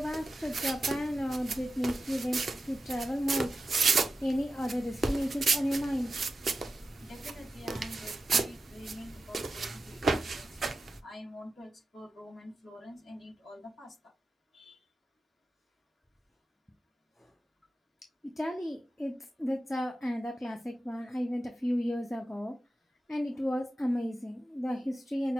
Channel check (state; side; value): normal; both; correlation 0.92